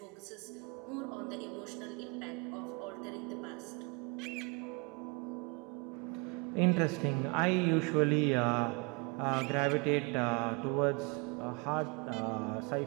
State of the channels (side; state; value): left; quieter; 30.0 dB